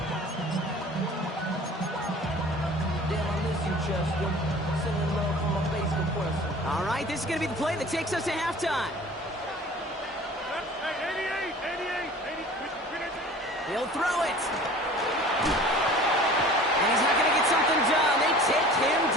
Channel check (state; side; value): normal; both; correlation 0.45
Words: All right, this is going to be the play that takes us to halftime. Hey, 88. He'll throw it. And he's not going to get something done. They take him